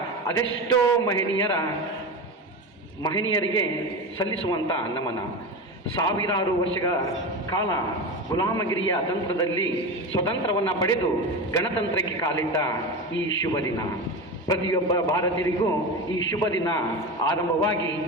ಅದೆಷ್ಟೋ ಮಹನೀಯರಿಗೆ ಸಲ್ಲಿಸುವಂಥ ನಮನ. ಸಾವಿರಾರು ವರ್ಷಗಳ ಕಾಲ ಗುಲಾಮಗಿರಿಯ ತಂತ್ರದಲ್ಲಿ ಸ್ವತಂತ್ರವನ್ನು ಪಡೆದು ಗಣತಂತ್ರಕ್ಕೆ ಕಾಲಿಟ್ಟ ಈ ಶುಭ ದಿನ, ಪ್ರತಿಯೊಬ್ಬ ಭಾರತೀಯರಿಗೂ ಈ ಶುಭ ದಿನ ಆರಂಭವಾಗಿ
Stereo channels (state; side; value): normal; both; correlation 0.23